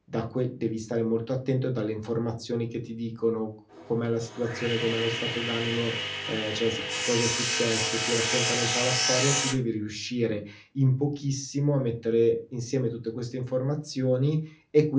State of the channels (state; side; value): identical; both; correlation 1.00